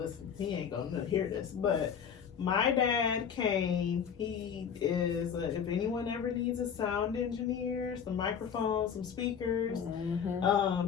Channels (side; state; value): right; quieter; 7.5 dB